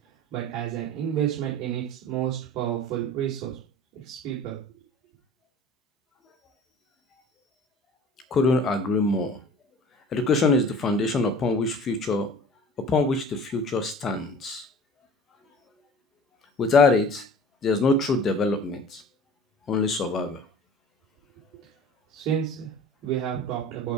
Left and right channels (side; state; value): both; normal; correlation 0.43